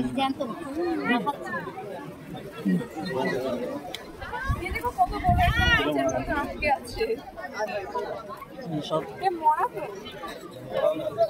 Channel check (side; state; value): both; identical; correlation 1.00